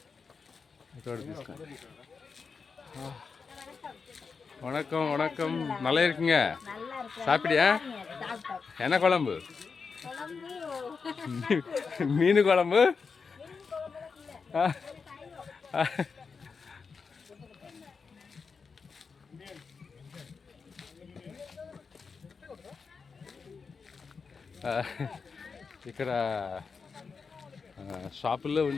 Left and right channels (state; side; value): quieter; right; 5.2 dB